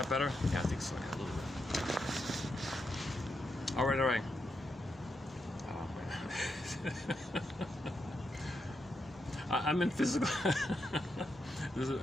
better? Yeah, I think so. Yeah, a little bit. All right. Oh man, I'm in physical.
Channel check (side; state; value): both; normal; correlation 0.84